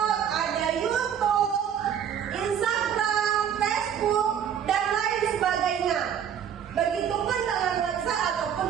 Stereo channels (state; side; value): quieter; left; 8.7 dB